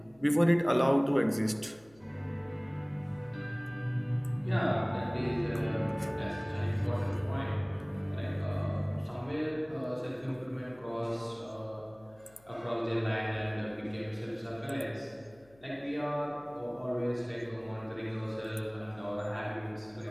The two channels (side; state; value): left; noise; hum, 28 dB below the sound